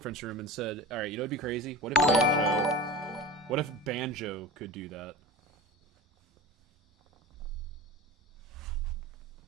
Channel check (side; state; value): both; normal; correlation 0.32